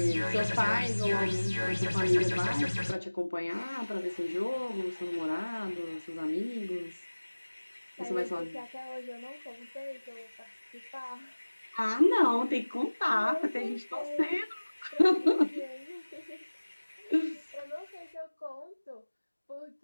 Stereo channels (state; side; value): inverted; both; correlation -1.00